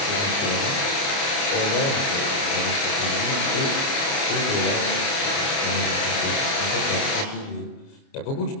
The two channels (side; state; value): right; late; 29 ms